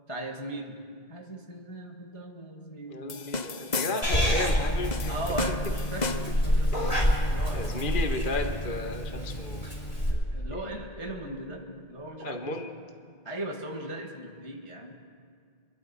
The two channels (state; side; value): late; right; 2.0 ms